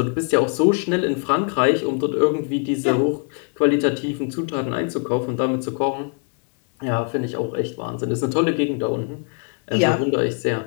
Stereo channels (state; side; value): quieter; right; 38.7 dB